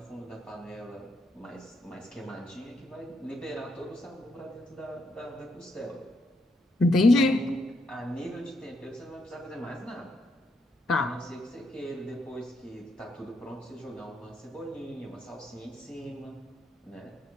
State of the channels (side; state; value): both; normal; correlation 0.78